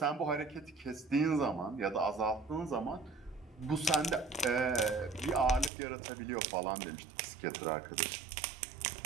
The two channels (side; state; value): left; drops out; at 5.7 s